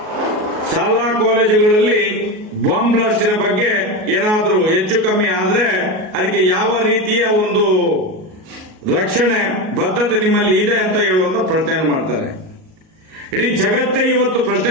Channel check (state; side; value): late; left; 38 ms